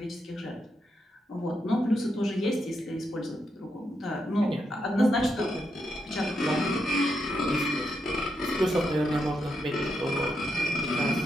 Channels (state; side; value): normal; both; correlation 0.82